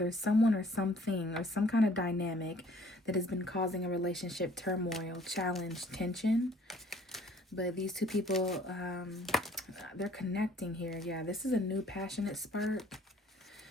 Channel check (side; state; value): both; normal; correlation 0.56